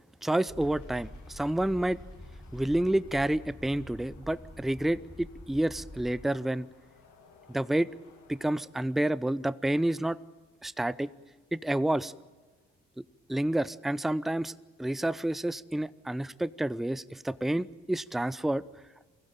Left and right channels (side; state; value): both; normal; correlation 0.98